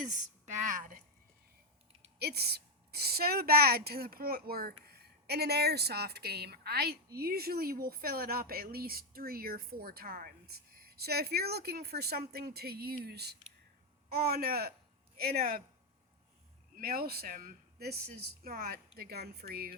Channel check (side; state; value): both; normal; correlation 0.04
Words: bad. It's so bad to the point where in an airsoft game, I usually will fill it up at least 3 or 4 times. So if you're looking for something to use on in a mail sim, this is not the gun for